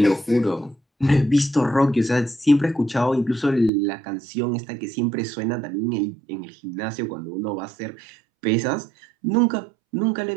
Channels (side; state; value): left; drops out; at 3.7 s